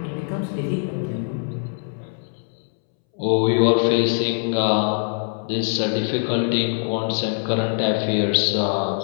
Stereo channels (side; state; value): right; silent; 64 dB below the other